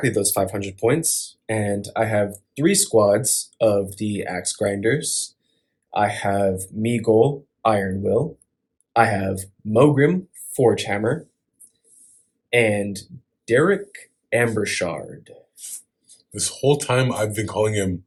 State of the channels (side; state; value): both; identical; correlation 1.00